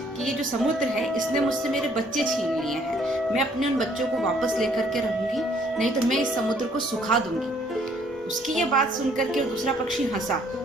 कि ये जो समुद्र है इसने मुझसे मेरे बच्चे छीन लिए हैं। मैं अपने उन बच्चों को वापस लेकर के रहूंगी, नहीं तो मैं इस समुद्र को सुखा दूंगी। उसकी ये बात सुनकर के दूसरा पक्षी हंसा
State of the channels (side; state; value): both; normal; correlation 0.63